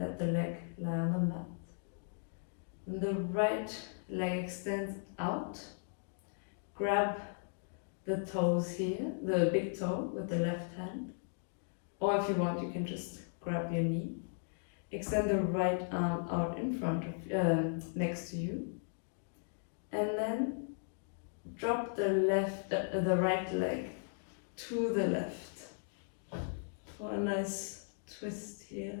the leg lie on the mat. And the right leg extends out. Grab the toes here, the big toe with the left hand. Or if you want, you can just grab your knee. Extend the right arm out in front of, next to you. And then drop the right leg to the left for a nice twist here.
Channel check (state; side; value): silent; right; digital silence